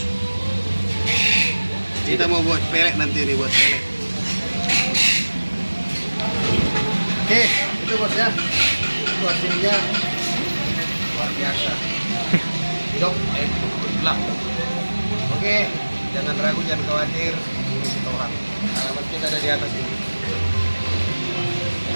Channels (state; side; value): inverted; both; correlation -1.00